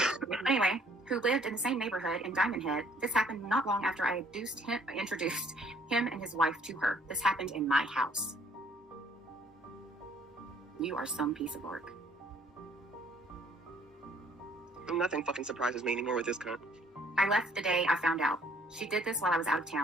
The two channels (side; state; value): both; normal; correlation 0.60